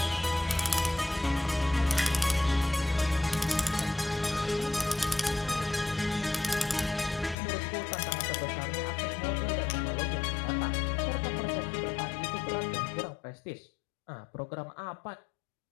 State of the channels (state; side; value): drops out; right; at 7.4 s